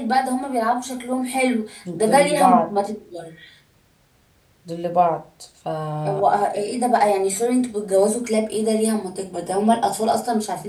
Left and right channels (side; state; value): both; identical; correlation 1.00